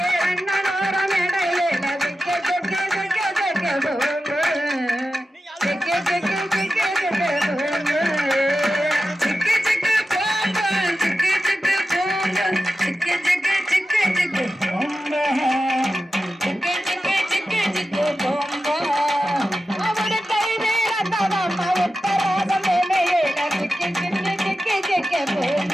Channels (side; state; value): both; normal; correlation 0.92